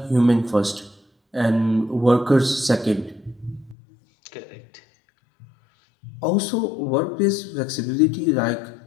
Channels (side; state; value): right; drops out; at 3.8 s